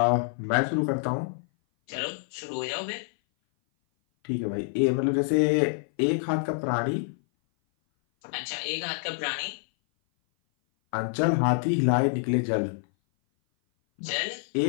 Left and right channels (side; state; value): right; silent; 57 dB below the other